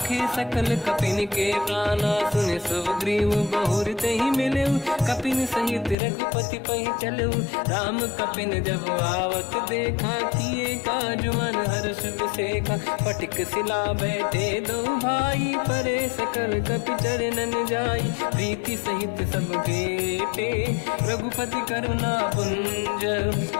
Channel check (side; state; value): right; drops out; at 6.0 s